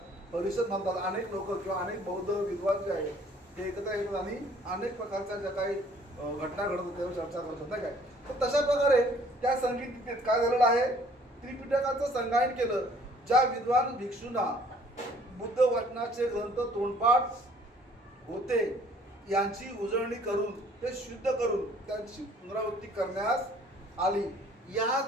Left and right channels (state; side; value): normal; both; correlation 0.57